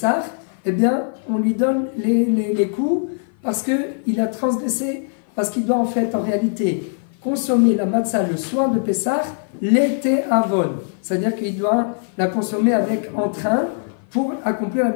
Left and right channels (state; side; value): silent; right; 55 dB below the other